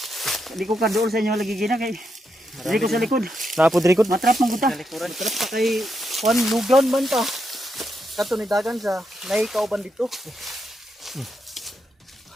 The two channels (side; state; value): both; normal; correlation 0.82